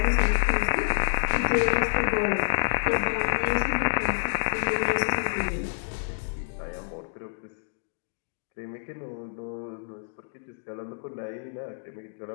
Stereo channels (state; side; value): silent; right; digital silence